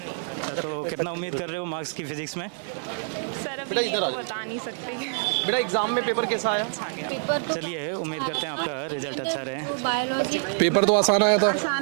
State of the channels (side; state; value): left; silent; 61 dB below the other